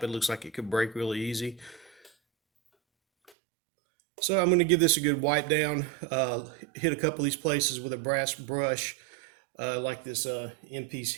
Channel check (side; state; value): left; drops out; at 3.3 s